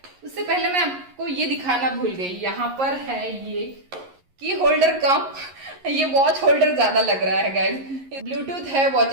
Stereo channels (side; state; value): left; late; 11 ms